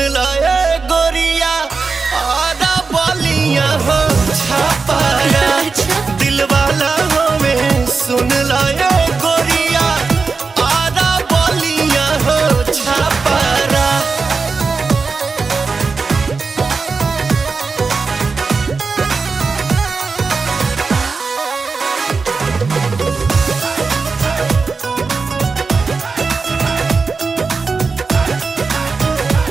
लाए गोरिया आधा बलिया हो छापारा। दिल वाला हमें सुन लाए गोरिया आधा बलिया हो छापारा।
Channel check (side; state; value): left; quieter; 4.6 dB